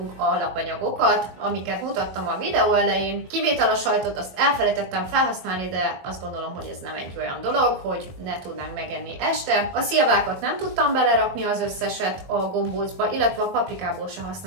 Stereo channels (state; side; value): late; left; 22 ms